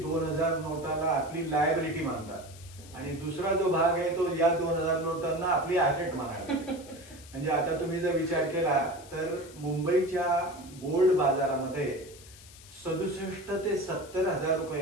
2000 नोटाला आपली लायबिलिटी मानतात आणि दुसरा जो भाग आहे तो या 2000 नोटांना आपली ऍसेट मानायला. म्हणजे आता तुम्ही जर विचार केला तर मुंबईच्या गोल्ड बाजारामध्ये 67 ते 70 हजार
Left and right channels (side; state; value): left; noise; hiss, 20 dB below the sound